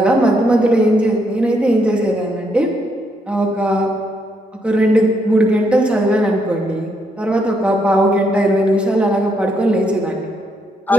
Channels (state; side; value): normal; both; correlation 0.75